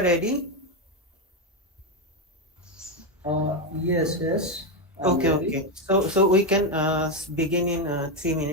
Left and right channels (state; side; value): normal; both; correlation 0.08